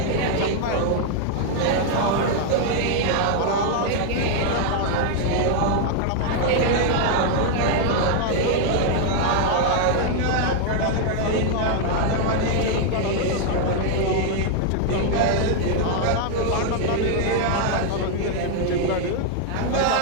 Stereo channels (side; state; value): both; different; correlation 0.00